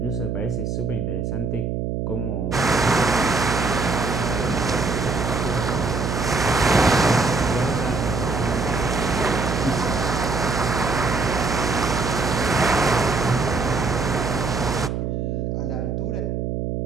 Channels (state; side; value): noise; right; hum, 2 dB below the sound